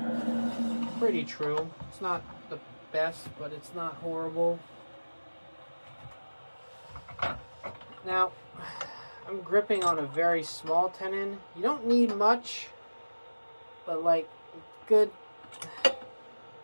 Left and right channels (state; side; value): inverted; both; correlation -1.00